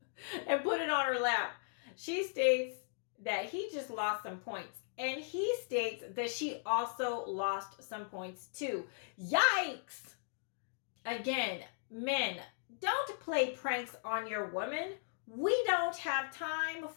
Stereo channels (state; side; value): silent; right; digital silence